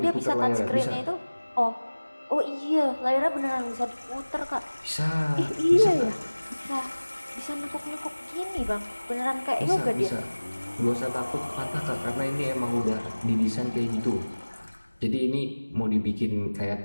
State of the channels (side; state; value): both; inverted; correlation -1.00